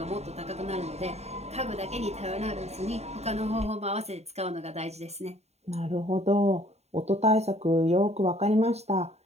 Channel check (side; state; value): left; late; 0.31 ms